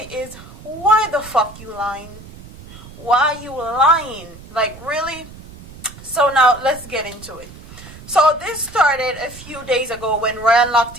is, why the fuck you lying? Why you lying? Like, really? So now let's get into it. So this started a few days ago when Ryan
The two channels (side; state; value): right; noise; rumble, 18 dB below the sound